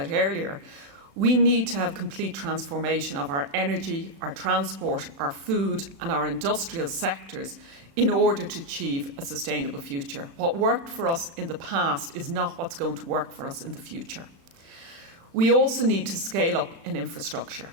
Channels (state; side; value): late; left; 36 ms